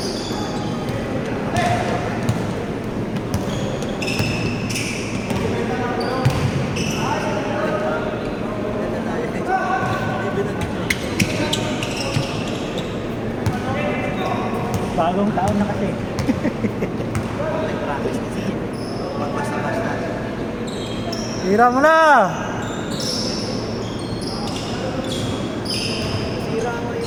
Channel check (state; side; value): identical; both; correlation 1.00